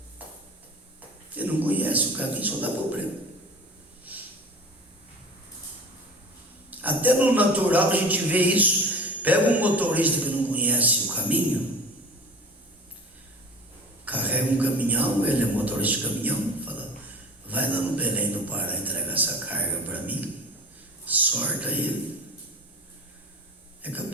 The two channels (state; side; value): normal; both; correlation 0.38